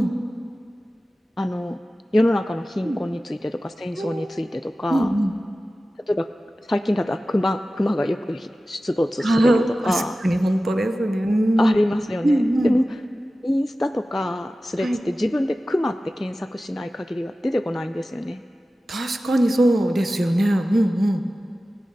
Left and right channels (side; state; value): both; normal; correlation 0.95